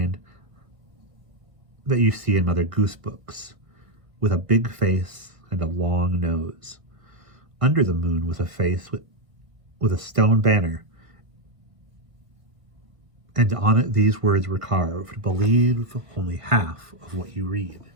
that you see in Mother Goose books, with a big face and a long nose. Under the moon was a face with a stone banner, and on it these words were carved: "Believe only half of what you read."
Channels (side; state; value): left; late; 1.6 ms